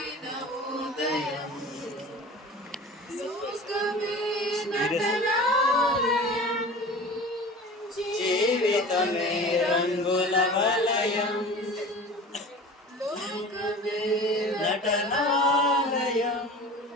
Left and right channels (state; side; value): normal; both; correlation 0.38